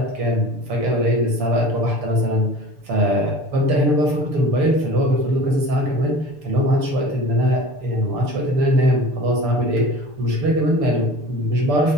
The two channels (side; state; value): left; late; 6.8 ms